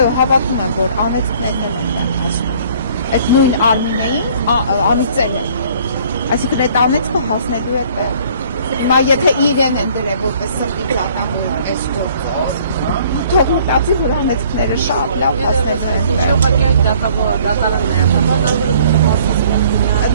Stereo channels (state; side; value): inverted; both; correlation -0.56